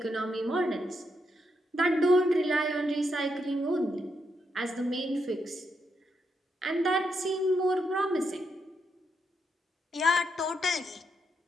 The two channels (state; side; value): normal; both; correlation 0.80